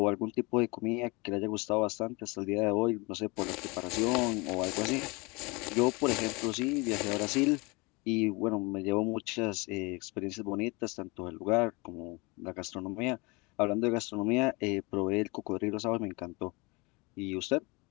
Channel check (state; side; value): quieter; right; 27.0 dB